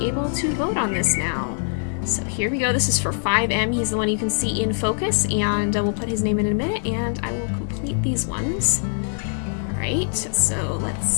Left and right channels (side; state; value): right; silent; digital silence